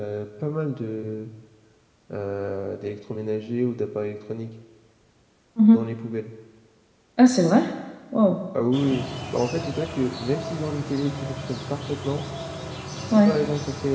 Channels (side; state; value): both; identical; correlation 1.00